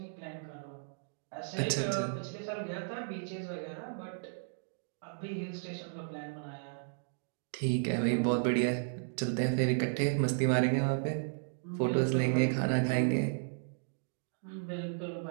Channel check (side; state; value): left; silent; digital silence